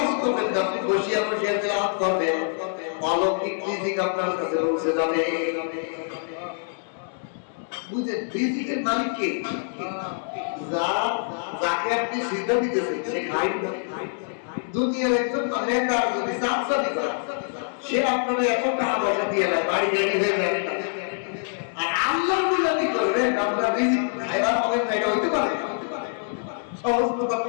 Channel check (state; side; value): silent; right; digital silence